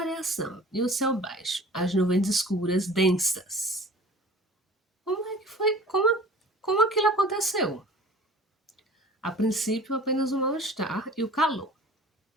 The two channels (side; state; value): both; normal; correlation 0.45